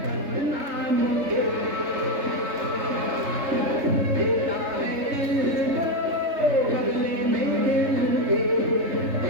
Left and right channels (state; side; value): late; left; 3.6 ms